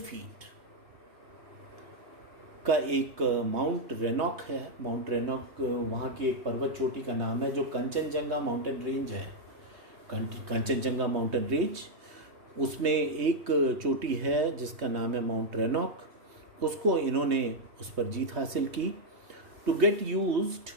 का एक माउंट रेनॉक है, माउंट रेनॉक वहाँ की एक पर्वत चोटी का नाम है जो कंचनजंगा माउंटेन रेंज है। कंचनजंगा माउंटेन रेंज, उसमें एक चोटी है जिसका नाम है माउंट रेनॉक। उसको इन्होंने उस पर जीत हासिल की। To get used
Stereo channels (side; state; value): left; late; 3.1 ms